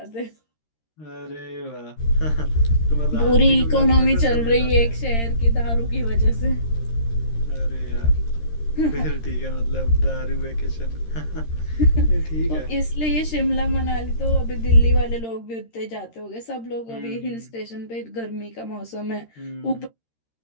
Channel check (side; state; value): right; late; 13 ms